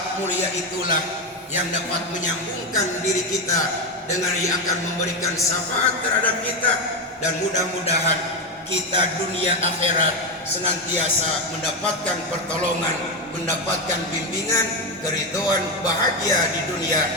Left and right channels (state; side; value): normal; both; correlation 0.11